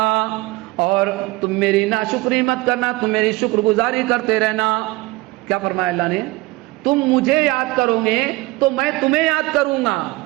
اور تم میری ناشکری مت کرنا، تم میری شکر گزاری کرتے رہنا۔ کیا فرمایا اللہ نے؟ تم مجھے یاد کرو گے تو میں تمہیں یاد کروں گا۔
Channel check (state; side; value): quieter; left; 20.9 dB